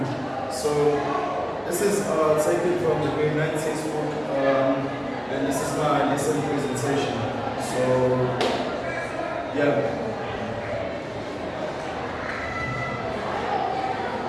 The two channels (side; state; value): both; identical; correlation 1.00